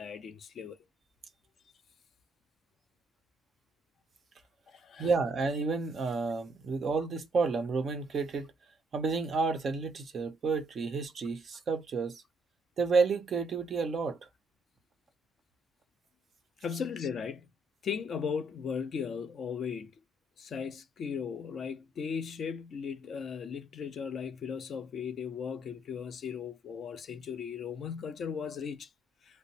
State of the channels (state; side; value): normal; both; correlation 0.71